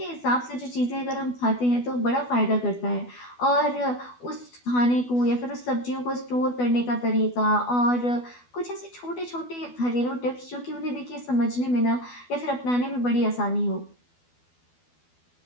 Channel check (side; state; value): right; late; 12 ms